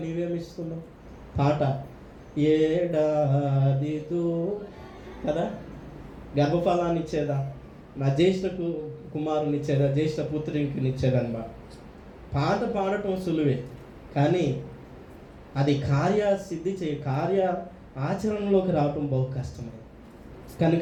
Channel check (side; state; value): both; identical; correlation 1.00